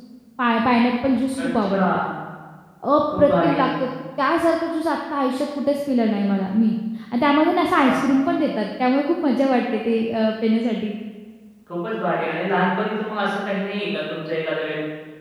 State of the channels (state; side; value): identical; both; correlation 1.00